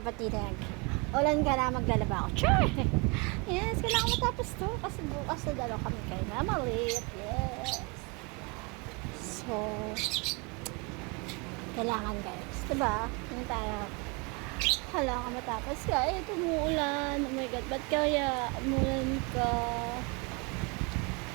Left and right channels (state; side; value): quieter; left; 30.2 dB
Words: Ulan ka na, maglalaba ako. Sure! Yes, kailangan matapos to. Kasi bukas na dalaw kami kay Mamalit. Yes. So, kailangan guys. Diba? Yung tayo. Kailangan matapos ka. Eh, tumuulan. Oh my God, ba't kaya umulan ka?